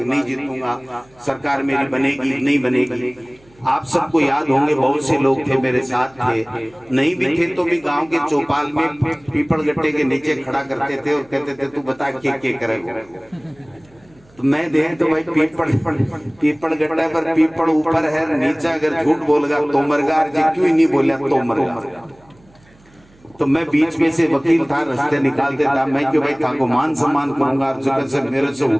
जीतूंगा, सरकार मेरी बनेगी नहीं बनेगी। आप सबको याद होंगे, बहुत से लोग थे मेरे साथ थे, नहीं भी थे तो भी गांव के चौपाल में पीपल गट्टे के नीचे खड़ा करते थे और कहते थे तू बता क्या करेगा। तो मैं देख तो भाई पीपल गट्टा पर पीपल ऊपर है, नीचे अगर झूठ बोलेगा तो मरगा, क्यों ही नहीं बोला तो मरगा। तो मैं बीच में से वकील था, रास्ते निकालते था, मैं क्यों भाई था को मान सम्मान करूंगा, जगह से मेरे से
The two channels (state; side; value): noise; right; hum, 29 dB below the sound